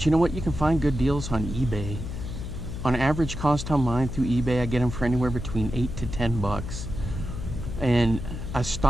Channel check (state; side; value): noise; left; hum, 7 dB below the sound